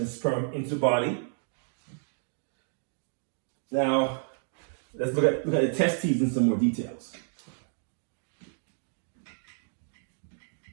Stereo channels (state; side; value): silent; left; digital silence